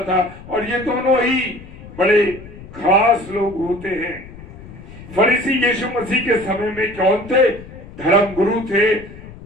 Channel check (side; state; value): left; noise; rumble, 16 dB below the sound